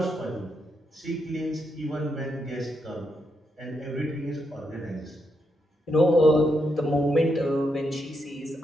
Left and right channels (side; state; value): both; normal; correlation 0.81